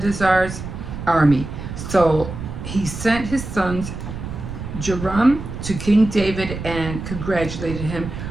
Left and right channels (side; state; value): right; noise; rumble, 8 dB below the sound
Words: army. So he sent his sons Joram to King David and congratulated him